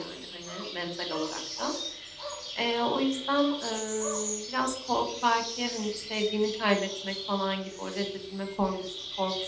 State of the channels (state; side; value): identical; both; correlation 1.00